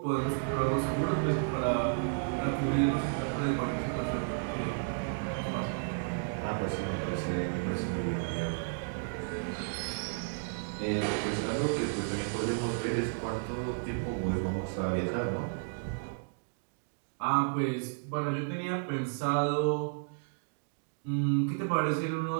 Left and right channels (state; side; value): silent; left; digital silence